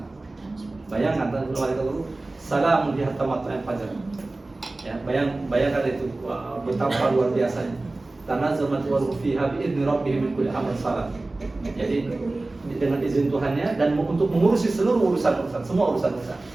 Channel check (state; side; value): quieter; left; 3.1 dB